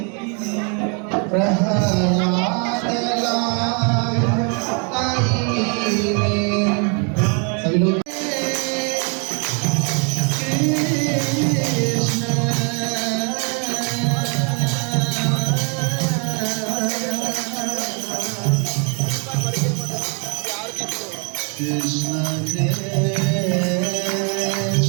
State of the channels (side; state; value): left; quieter; 37.4 dB